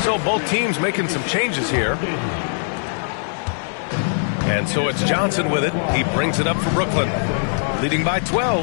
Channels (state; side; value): silent; right; 61 dB below the other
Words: So both teams making some changes here. And so it's Johnson with it. He brings it up for Brooklyn, leading by